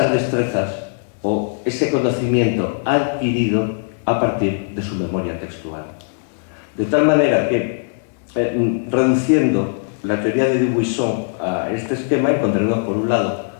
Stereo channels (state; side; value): silent; right; digital silence